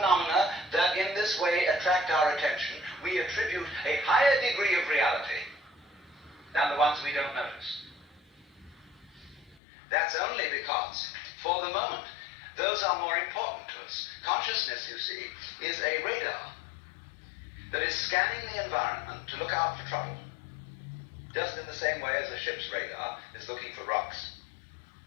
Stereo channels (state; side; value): drops out; right; at 9.6 s